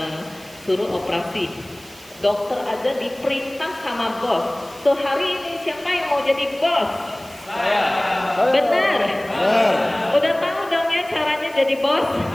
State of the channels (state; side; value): noise; right; hiss, 22 dB below the sound